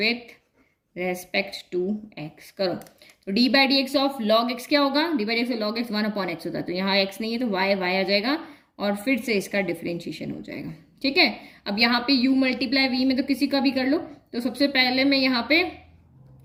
respect to x करो। तो d by d x of log x क्या होगा, d by d x of log x 1 upon x होता है, तो यहाँ x नहीं है तो y आ जाएगा और फिर से इसका डिफ्रेंशिएशन हो जाएगा। ठीक है, अब यहाँ पे u मल्टीप्लाई v में तो किसी का भी कर लो। तो सबसे पहले मैं यहाँ पे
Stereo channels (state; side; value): identical; both; correlation 1.00